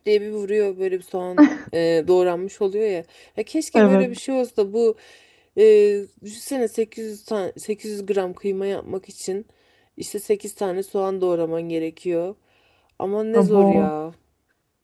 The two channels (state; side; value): identical; both; correlation 1.00